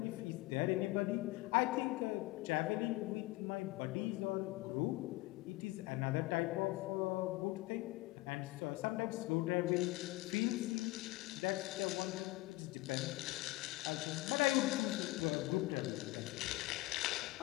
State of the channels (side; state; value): right; quieter; 20.7 dB